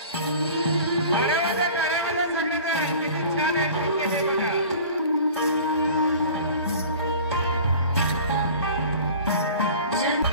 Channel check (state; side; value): inverted; both; correlation -0.43